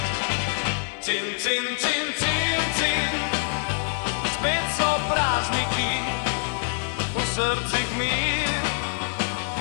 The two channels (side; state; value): right; silent; 59 dB below the other